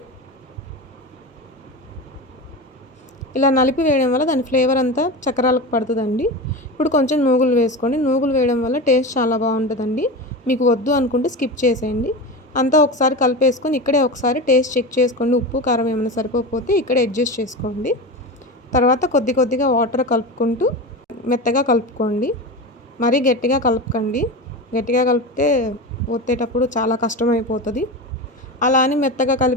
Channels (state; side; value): normal; both; correlation 0.25